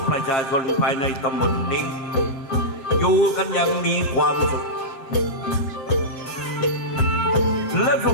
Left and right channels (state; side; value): late; right; 7.5 ms